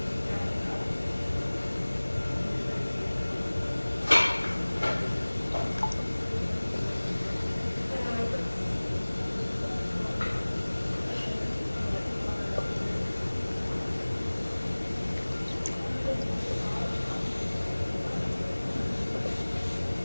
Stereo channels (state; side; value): inverted; both; correlation -1.00